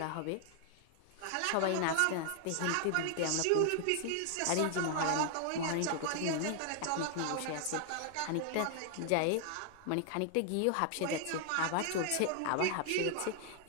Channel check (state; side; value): different; both; correlation 0.00